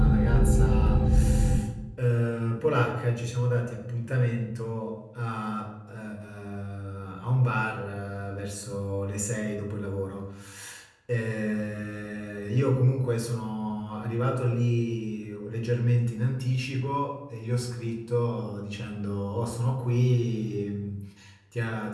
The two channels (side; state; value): both; identical; correlation 1.00